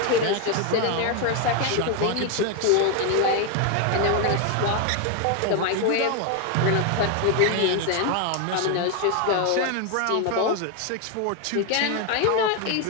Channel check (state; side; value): different; both; correlation 0.01